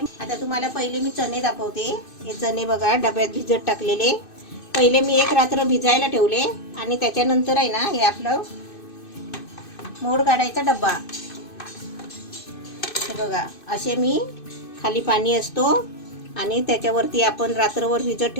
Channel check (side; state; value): right; late; 2.6 ms